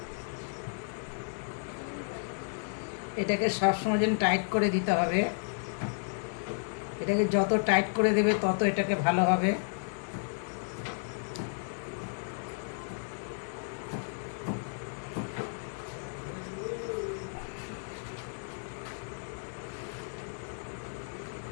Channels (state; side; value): silent; right; digital silence